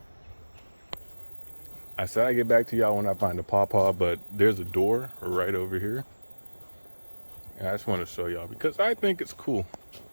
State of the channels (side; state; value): both; inverted; correlation -1.00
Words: I said I'd get back to y'all when I find a pawpaw, but there's a door right over here. And I just want to show y'all because I think it's cool.